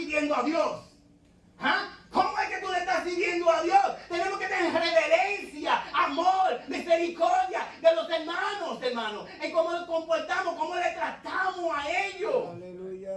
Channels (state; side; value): identical; both; correlation 1.00